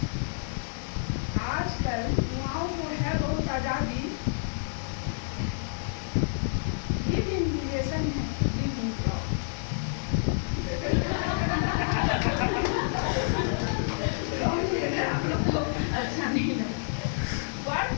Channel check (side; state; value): right; silent; digital silence